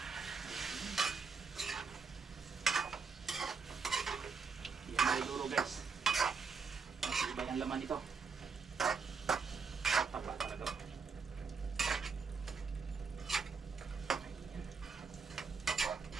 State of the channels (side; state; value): left; quieter; 5.1 dB